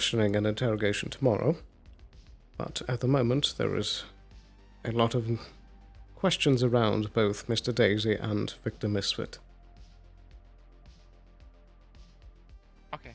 and interrogation tomorrow, but at the moment there is a lot of questions around both Mr. Daisy and Victor Misfit. Okay.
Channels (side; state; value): both; identical; correlation 1.00